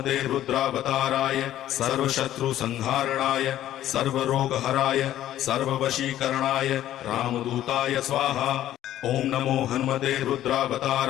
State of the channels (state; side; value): quieter; right; 12.6 dB